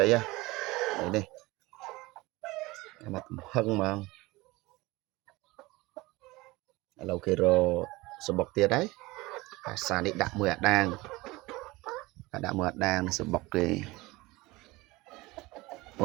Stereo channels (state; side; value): quieter; left; 21.4 dB